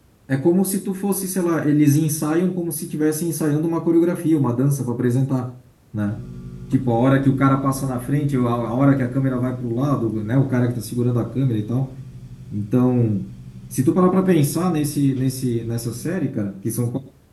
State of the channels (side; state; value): both; identical; correlation 1.00